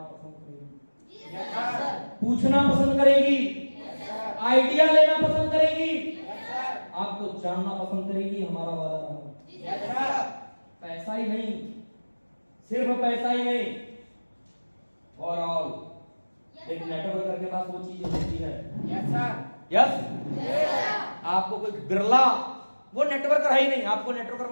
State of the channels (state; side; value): inverted; both; correlation -1.00